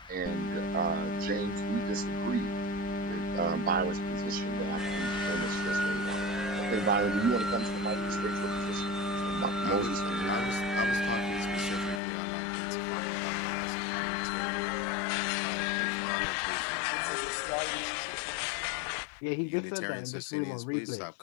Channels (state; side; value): drops out; right; at 12.0 s